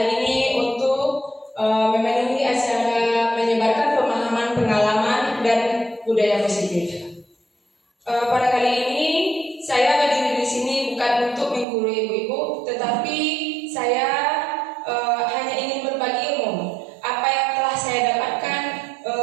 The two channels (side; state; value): left; drops out; at 11.7 s